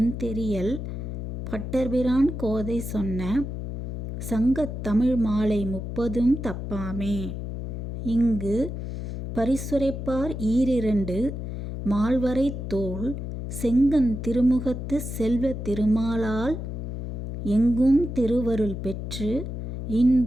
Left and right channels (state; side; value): noise; left; hum, 6 dB below the sound